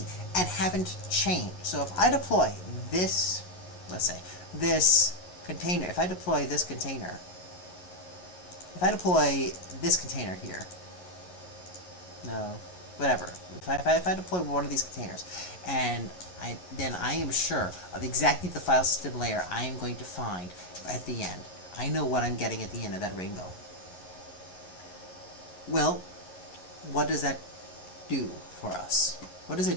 and haven't changed. So if I deploy this, let's say, this container, if I deploy this container here, no, whatever, if I deploy one of these containers, and then I am sure of exactly the file system layer I am going to find at the end. I know what I'm getting at the end of that rainbow. Well, what does that do for us? What does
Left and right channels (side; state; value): right; late; 11 ms